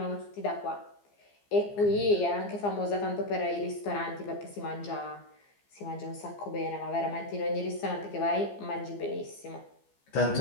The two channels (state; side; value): late; right; 15 ms